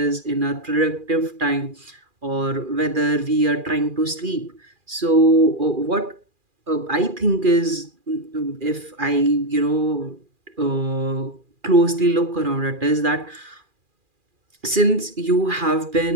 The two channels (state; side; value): late; left; 2.4 ms